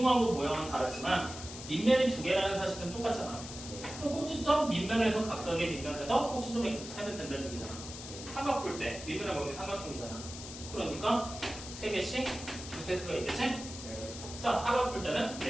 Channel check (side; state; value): left; noise; hiss, 11 dB below the sound